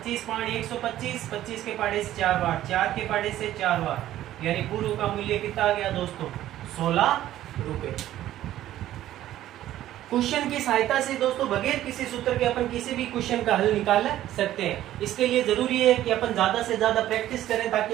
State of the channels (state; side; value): quieter; left; 13.3 dB